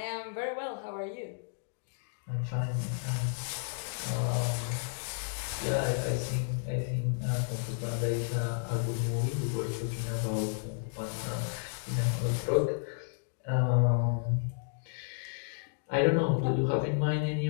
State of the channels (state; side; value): silent; right; digital silence